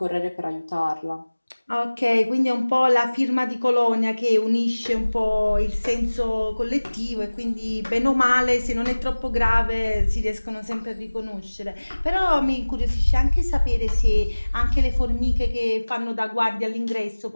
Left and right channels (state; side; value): inverted; both; correlation -1.00